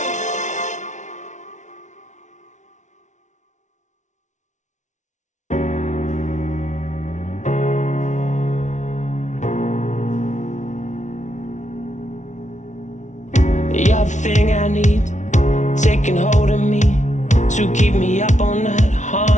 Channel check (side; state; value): right; late; 0.35 ms